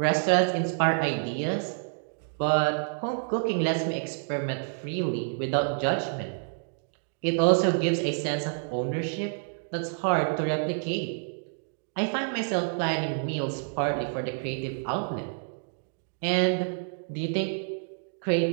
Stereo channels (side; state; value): left; silent; digital silence